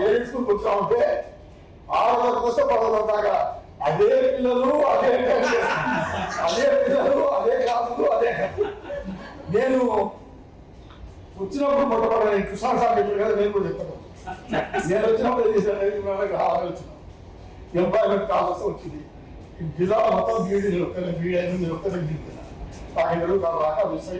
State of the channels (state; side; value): identical; both; correlation 1.00